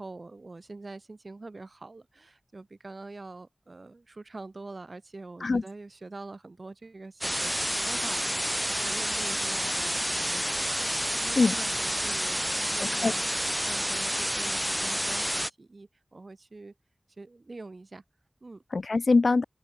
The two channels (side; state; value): both; normal; correlation 0.98